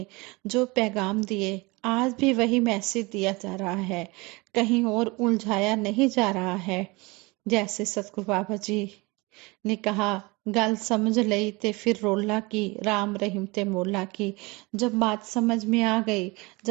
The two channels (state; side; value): quieter; left; 24.9 dB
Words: जो पैगाम दिए, आज भी वही मैसेज दिया जा रहा है, कहीं और उलझाया नहीं जा रहा है। जैसे सतगुरु बाबा जी ने कहा गल समझ लई ते फिर रोला की, राम रहीम ते मोला की। जब बात समझ में आ गई,